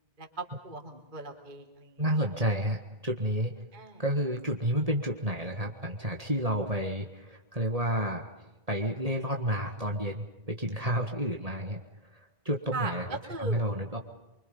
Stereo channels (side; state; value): left; late; 1.8 ms